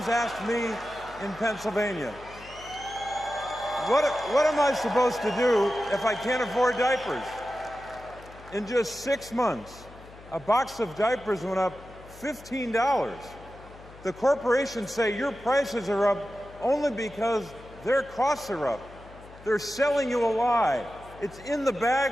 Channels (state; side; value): noise; left; hum, 20 dB below the sound